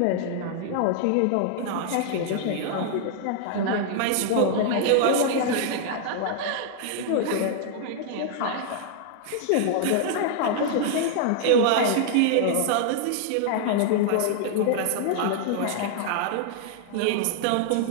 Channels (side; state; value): both; different; correlation -0.01